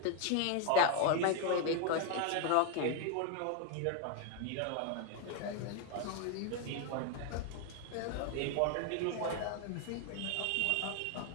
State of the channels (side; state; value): both; different; correlation 0.01